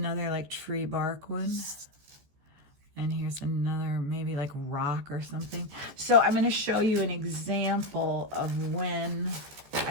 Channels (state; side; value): late; left; 14 ms